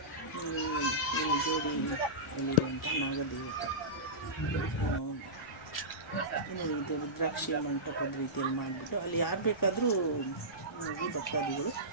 ಜೋಡಿಯಲ್ಲಿರುವಂಥ ನಾಗದೇವತೆ, ಇನ್ನು ಇದು ರುದ್ರಾಕ್ಷಿಯ ಮಂಟಪದ ರೀತಿಯಲ್ಲಿ ಮಾಡಿಬಿಟ್ಟು ಅಲ್ಲಿ ಯಾರು ಬೇಕಾದರೂ ಹೋಗಿ ಭಕ್ತಾದಿಗಳು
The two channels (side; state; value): left; noise; rumble, 25 dB below the sound